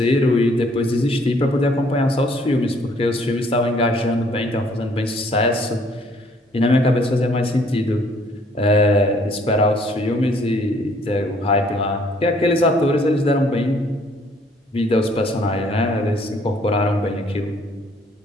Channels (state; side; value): normal; both; correlation 0.62